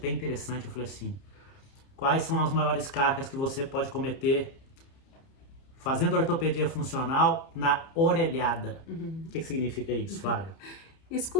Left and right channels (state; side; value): late; right; 30 ms